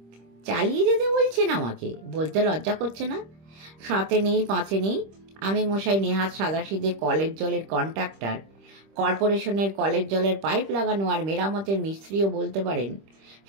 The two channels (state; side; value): late; left; 25 ms